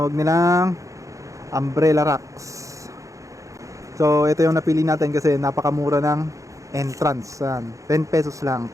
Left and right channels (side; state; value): left; late; 0.16 ms